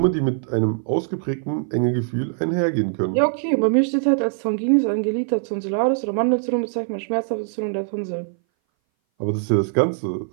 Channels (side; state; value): left; silent; 60 dB below the other